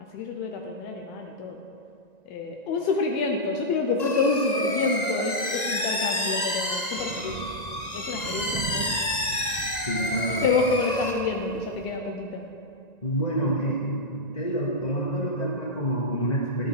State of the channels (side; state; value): right; late; 1.9 ms